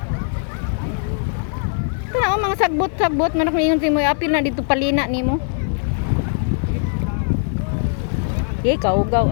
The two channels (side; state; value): right; silent; digital silence